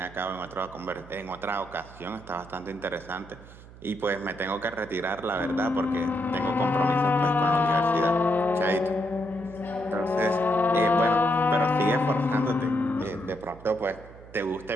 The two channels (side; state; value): right; noise; hum, 19 dB below the sound